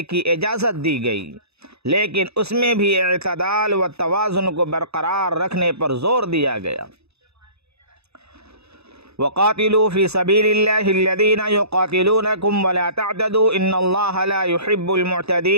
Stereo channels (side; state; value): left; late; 0.79 ms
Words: کی اجازت دی گئی، لیکن اس میں بھی اعتدال و توازن کو برقرار رکھنے پر زور دیا گیا۔ وَقَاتِلُوا فِي سَبِيلِ اللَّهِ الَّذِينَ يُقَاتِلُونَكُمْ وَلَا تَعْتَدُوا إِنَّ اللَّهَ لَا يُحِبُّ